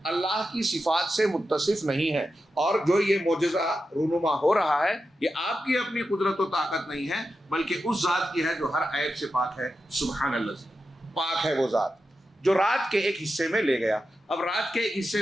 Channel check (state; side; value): normal; both; correlation 0.90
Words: اللہ کی صفات سے متصف نہیں ہے، اور جو یہ معجزہ رونما ہو رہا ہے یہ آپ کی اپنی قدرت و طاقت نہیں ہے بلکہ اس ذات کی ہے جو ہر عیب سے پاک ہے. سبحان اللہ، پاک ہے وہ ذات جو رات کے ایک حصے میں لے گیا. اب رات کے ایک حصے